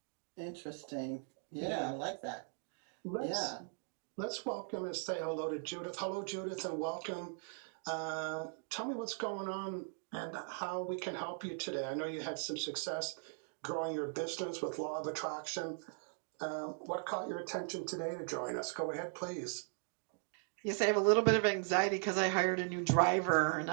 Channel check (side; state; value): left; silent; 52 dB below the other